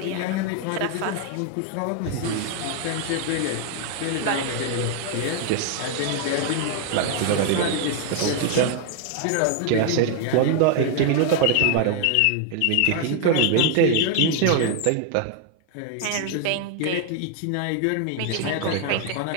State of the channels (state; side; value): different; both; correlation 0.00